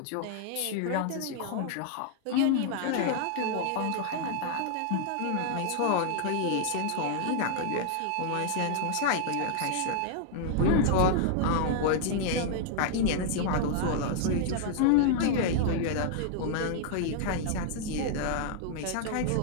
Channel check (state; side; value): different; both; correlation -0.01